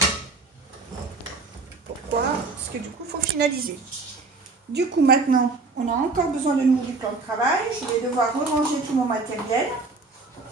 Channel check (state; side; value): quieter; left; 3.8 dB